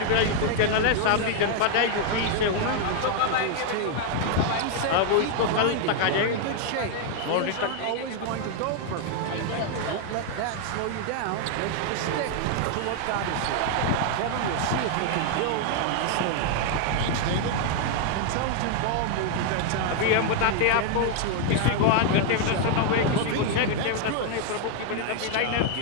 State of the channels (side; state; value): both; different; correlation 0.00